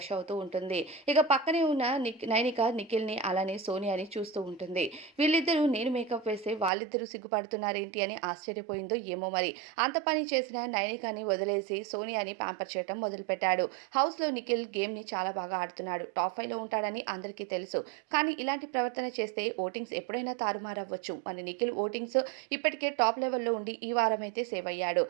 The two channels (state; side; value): drops out; left; at 6.7 s